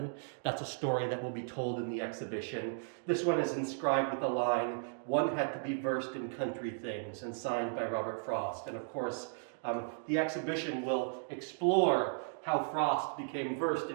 That's a story that will be told in the exhibition. This one is inscribed with the line, "One had to be versed in country things," and signed by Robert Frost. And of course, the exhibition will explore how Frost became versed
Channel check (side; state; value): left; silent; digital silence